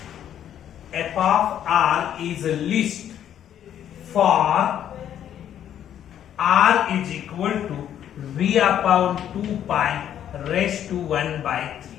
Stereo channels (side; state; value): right; quieter; 10.2 dB